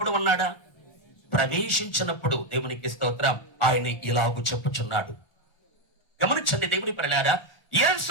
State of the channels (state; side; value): late; right; 1.4 ms